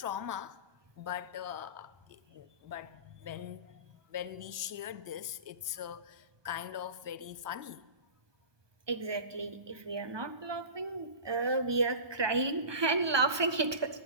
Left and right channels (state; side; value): late; left; 1.2 ms